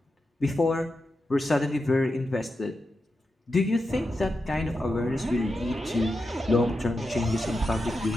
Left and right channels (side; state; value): both; normal; correlation 0.89